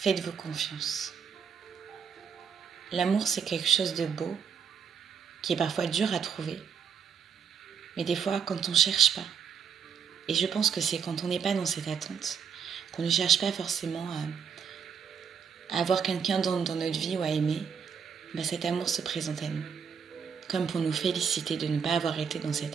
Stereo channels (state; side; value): quieter; left; 7.0 dB